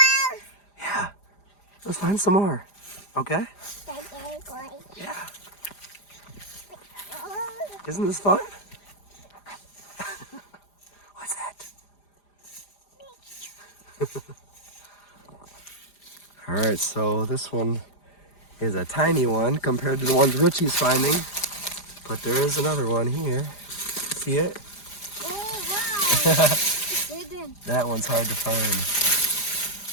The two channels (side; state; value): right; late; 4.9 ms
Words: Yeah. Let's find some more. Okay? Yeah. Isn't this fun? What's that? All right, so this one is a tiny one compared to the ones Richie's finding. But there is another one here. See it? Oh, wow. It's hidden. That one's hard to find.